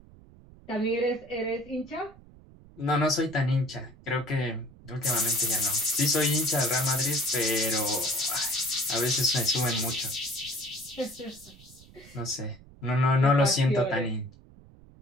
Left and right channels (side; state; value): right; noise; rumble, 23 dB below the sound